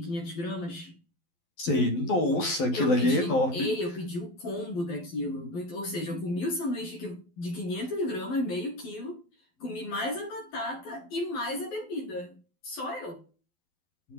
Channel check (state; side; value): late; right; 12 ms